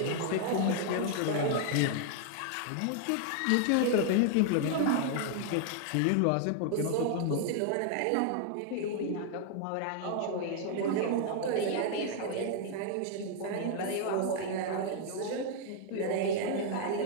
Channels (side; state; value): both; different; correlation 0.00